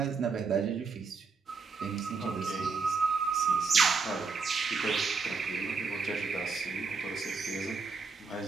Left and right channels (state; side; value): quieter; left; 4.9 dB